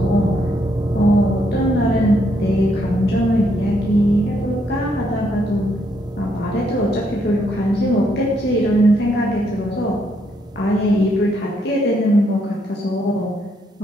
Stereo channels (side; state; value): both; normal; correlation 0.74